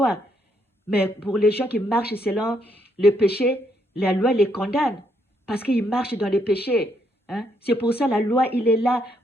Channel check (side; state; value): both; normal; correlation 0.74